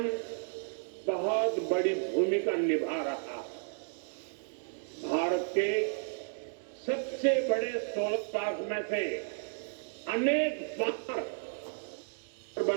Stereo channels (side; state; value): left; silent; digital silence